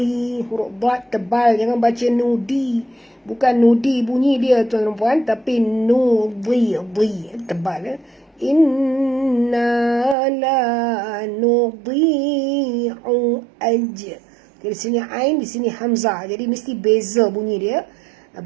huruf dad tebal, jangan baca nudi, bukan nudi bunyi dia tuan-tuan puan, tapi nudi, tebal. Inna la nudi'u ajr. Di sini ain, di sini hamzah, jadi mesti beza bunyi dia,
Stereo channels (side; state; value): left; drops out; at 10.2 s